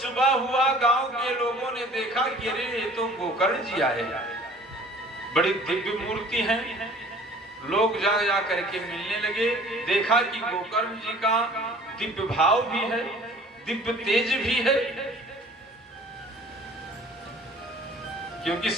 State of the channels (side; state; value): both; normal; correlation 0.50